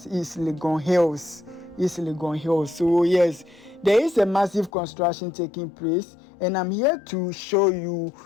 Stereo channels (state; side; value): drops out; right; at 4.7 s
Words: East Legon Hills. East Legon Hills. So yes, there is a massive construction taking place, and I'm here to show you